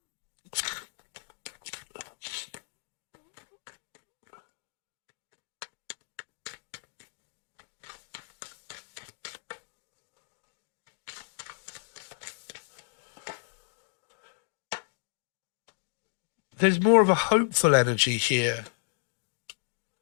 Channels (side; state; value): right; silent; digital silence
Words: There's more of a hopeful energy here.